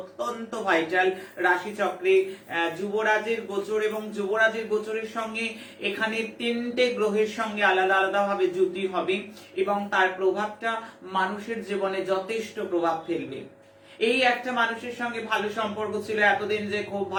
ভাইটাল রাশি চক্রে যুবরাজের গোচর। এবং যুবরাজের গোচরের সঙ্গে এখানে তিনটে গ্রহের সঙ্গে আলাদা আলাদা ভাবে যুতি হবে এবং তার প্রভাবটা মানুষের জীবনে যথেষ্ট প্রভাব ফেলবে। এই একটা মানুষের সঙ্গে ভালো সম্পর্ক ছিল এতদিন, যে খুব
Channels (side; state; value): both; identical; correlation 1.00